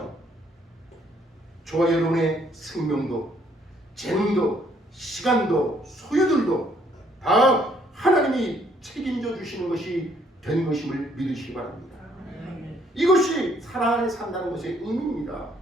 저와 여러분의 생명도, 재능도, 시간도, 소유들도 다 하나님이 책임져 주시는 것이 된 것임을 믿으시기 바랍니다. 이것이 사랑 안에 산다는 것의 의미입니다.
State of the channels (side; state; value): both; normal; correlation 0.66